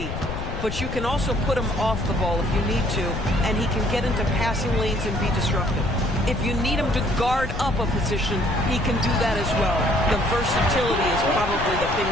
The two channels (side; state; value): left; noise; rumble, 6 dB below the sound